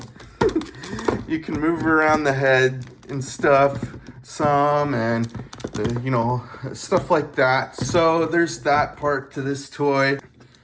You can move around the head and stuff some, and you know, stuff like that. So there's that part to this toy.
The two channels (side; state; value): both; identical; correlation 1.00